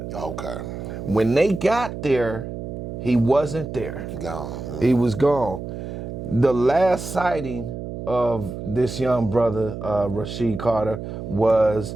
Okay. When they got there, he wasn't there. Gone. He was gone. The last sighting of this young brother, Rasheem Carter,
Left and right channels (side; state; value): right; noise; hum, 8 dB below the sound